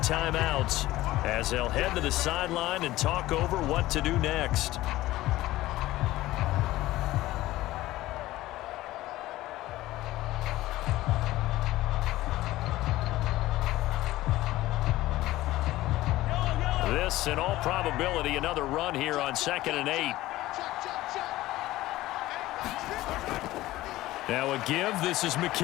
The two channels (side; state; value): right; quieter; 16.7 dB